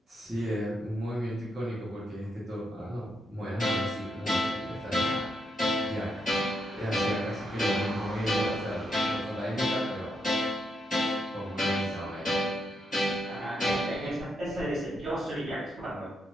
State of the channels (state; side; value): normal; both; correlation 0.80